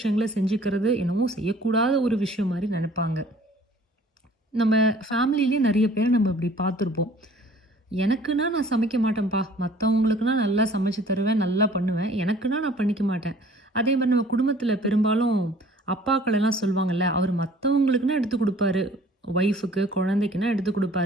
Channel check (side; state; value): both; normal; correlation 0.53